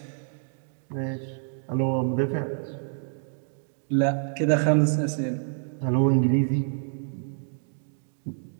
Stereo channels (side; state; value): left; silent; digital silence